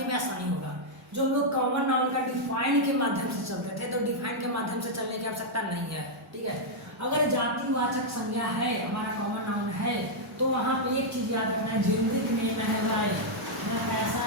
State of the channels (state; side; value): normal; both; correlation -0.04